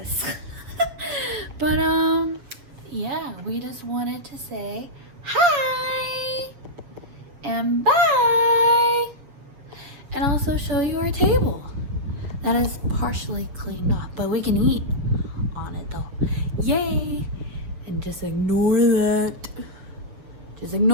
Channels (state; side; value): late; left; 7.2 ms